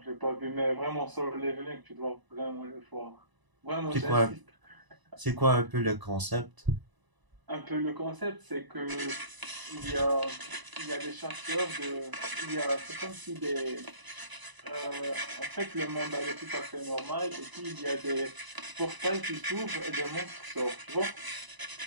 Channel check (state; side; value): late; left; 1.0 ms